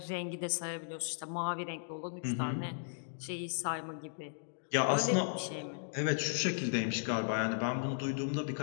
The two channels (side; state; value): right; silent; digital silence